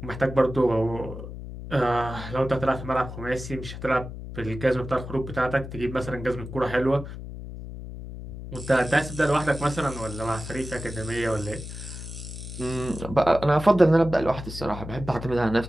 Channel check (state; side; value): noise; left; hum, 10 dB below the sound